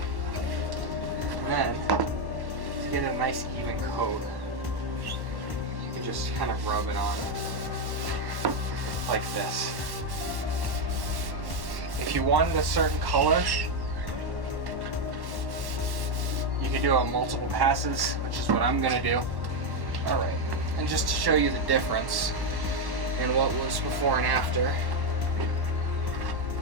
And then, to get a nice even coat, you can just kind of rub it on like this. If you wanted a certain color, you can do it on multiple passes, which is what I'm gonna do. All right, and just to show you the difference in what was before and after.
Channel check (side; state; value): left; late; 1.1 ms